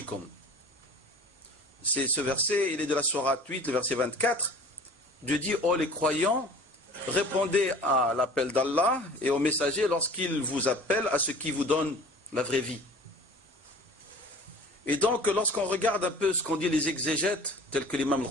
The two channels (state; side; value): normal; both; correlation 0.44